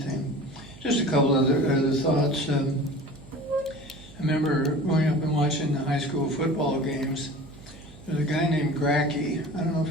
thing. Just a couple other thoughts. I remember growing up and watching the high school football games. There's a guy named Gracky. I don't know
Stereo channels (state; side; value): noise; right; hum, 20 dB below the sound